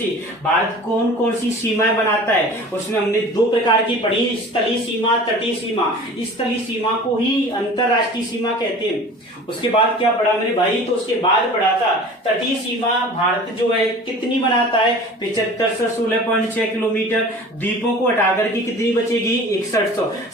भारत कौन कौन सी सीमाएं बनाता है। उसमें हमने दो प्रकार की पढ़ी, स्थलीय सीमा, तटीय सीमा। स्थलीय सीमा को ही अंतरराष्ट्रीय सीमा कहते हैं। उसके बाद क्या पढ़ा मेरे भाई, तो उसके बाद पढ़ा था तटीय सीमा भारत जो है कितनी बनाता है, 75 से 16.6 किलोमीटर। द्वीपों को हटाकर के कितनी बचेगी, 6100।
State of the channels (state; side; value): normal; both; correlation 0.41